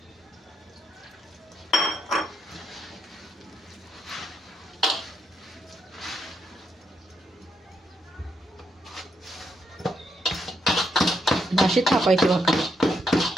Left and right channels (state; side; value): normal; both; correlation 0.79